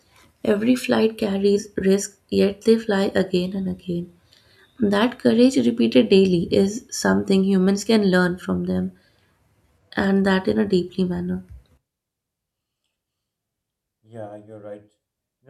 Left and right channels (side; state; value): both; identical; correlation 1.00